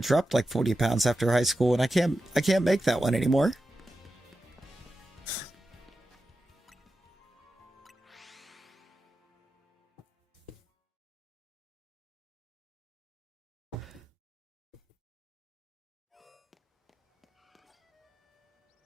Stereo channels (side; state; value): both; normal; correlation 0.91